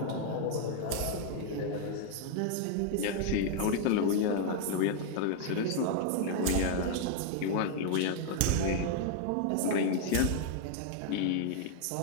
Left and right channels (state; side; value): different; both; correlation 0.00